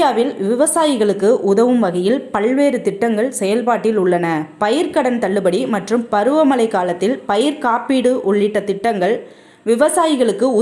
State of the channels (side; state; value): both; identical; correlation 1.00